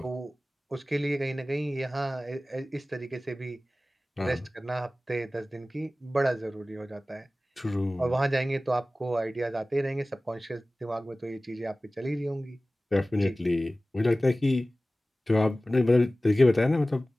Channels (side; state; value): both; normal; correlation 0.97